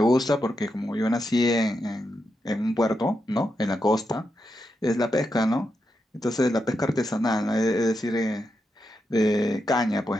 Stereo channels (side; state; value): both; normal; correlation 0.85